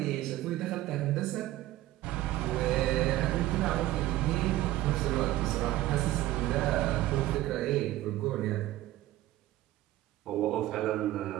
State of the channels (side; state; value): left; quieter; 15.5 dB